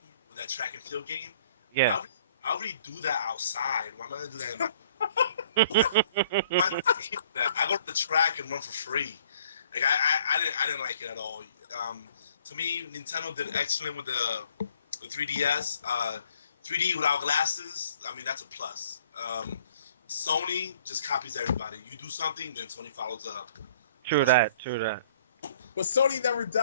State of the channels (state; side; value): inverted; both; correlation -0.58